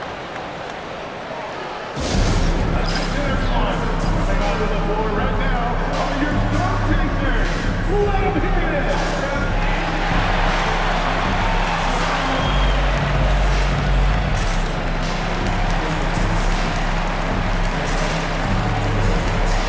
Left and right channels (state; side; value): identical; both; correlation 1.00